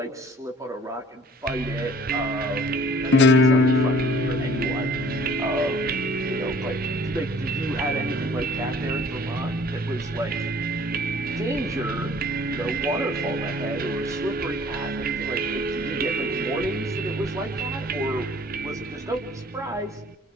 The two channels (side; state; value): both; normal; correlation 0.52